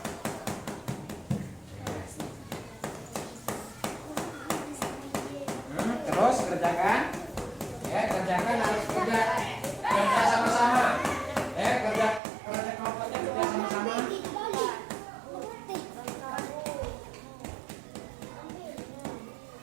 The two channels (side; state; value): left; drops out; at 12.2 s